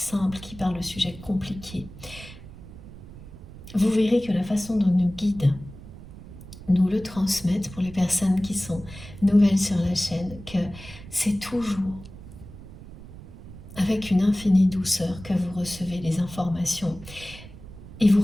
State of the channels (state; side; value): noise; right; rumble, 16 dB below the sound